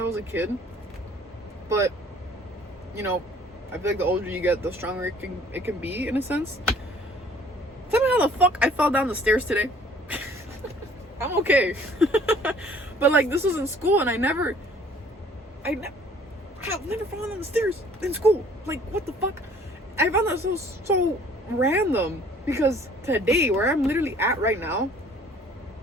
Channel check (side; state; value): both; normal; correlation 0.55